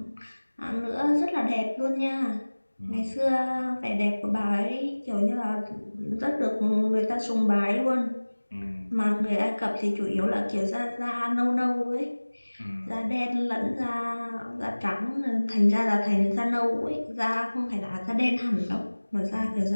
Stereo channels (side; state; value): both; inverted; correlation -1.00